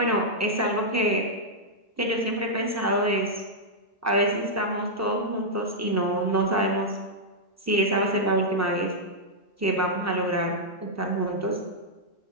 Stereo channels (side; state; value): both; normal; correlation -0.07